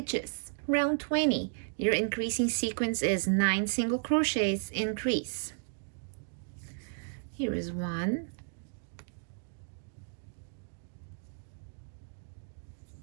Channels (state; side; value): silent; left; digital silence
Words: Round 20, your increasing sequence is 9 single crochets, increase. Here is 1,